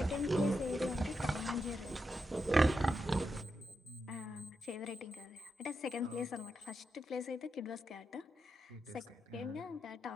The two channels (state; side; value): normal; both; correlation 0.86